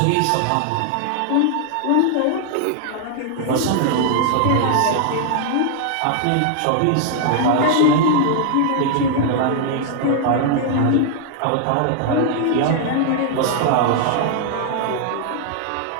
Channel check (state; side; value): different; both; correlation 0.00